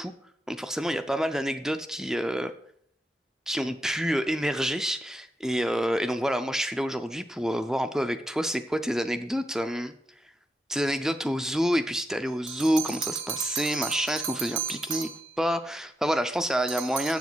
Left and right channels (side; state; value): both; normal; correlation 0.84